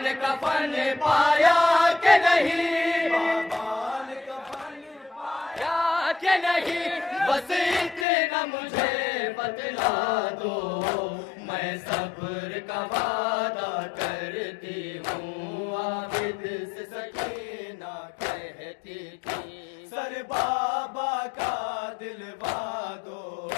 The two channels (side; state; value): right; drops out; at 8.1 s